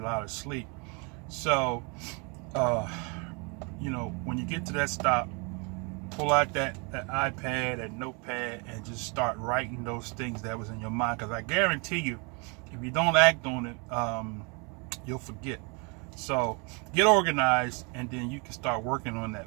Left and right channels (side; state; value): left; quieter; 32.4 dB